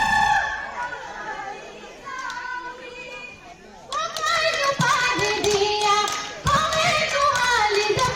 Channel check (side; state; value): both; identical; correlation 1.00